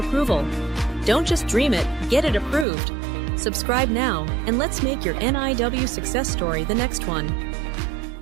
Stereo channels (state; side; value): drops out; left; at 2.7 s